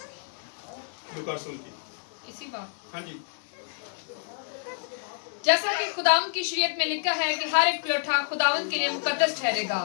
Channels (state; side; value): silent; right; 59 dB below the other